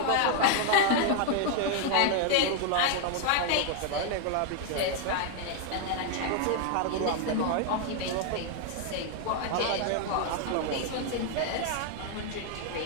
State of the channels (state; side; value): different; both; correlation 0.00